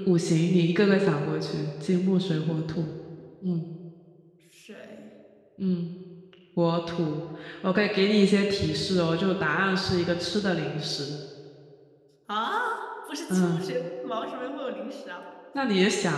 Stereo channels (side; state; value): both; identical; correlation 1.00